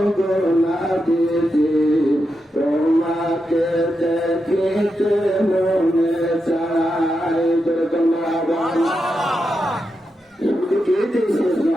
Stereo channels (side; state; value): both; normal; correlation 0.87